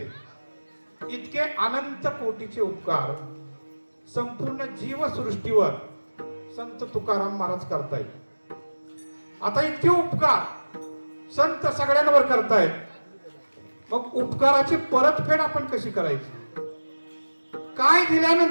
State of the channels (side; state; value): both; inverted; correlation -1.00